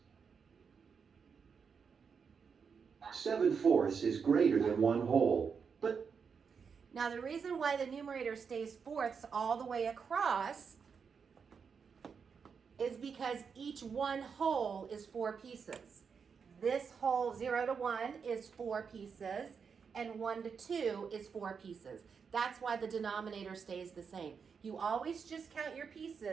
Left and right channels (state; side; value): quieter; left; 6.1 dB